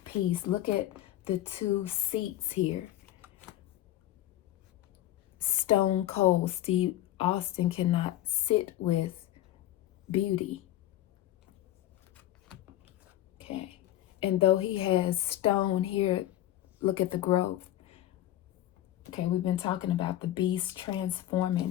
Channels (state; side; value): quieter; right; 13.6 dB